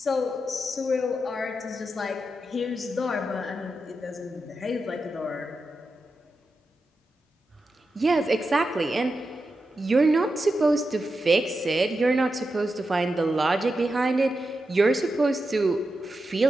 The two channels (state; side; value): normal; both; correlation 0.89